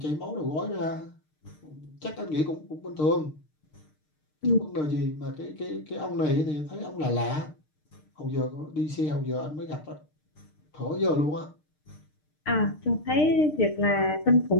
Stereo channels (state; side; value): late; right; 6.6 ms